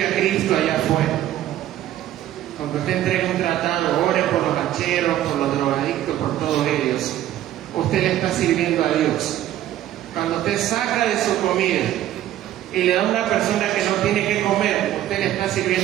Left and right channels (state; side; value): quieter; left; 12.8 dB